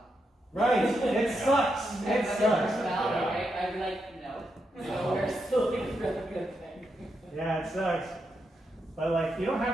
Right? It sucks. It sucks. Personality, right? I'd be like, no. So we're still doing a really good thing. Yeah, it sucks. But like, you don't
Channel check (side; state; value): both; normal; correlation 0.83